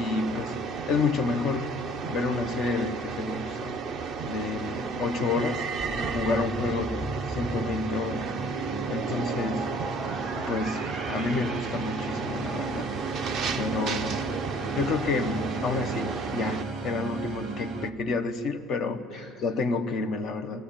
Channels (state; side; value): normal; both; correlation 0.55